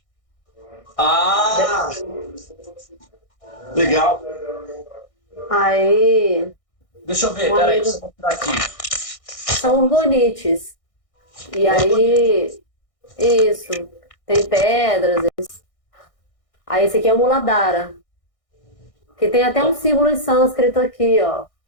Legal. Aí. Deixa eu ver, peraí, deixa eu mostrar aqui. São orgonites. E aí, isso, tem pedras. Aí esse aqui é o Muladhara. Que tem até um símbolo em sânscrito aqui, ó.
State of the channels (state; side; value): late; right; 1.6 ms